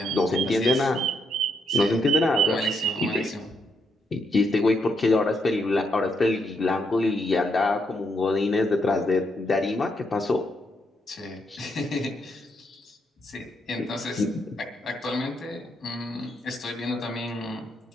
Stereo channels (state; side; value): normal; both; correlation 0.77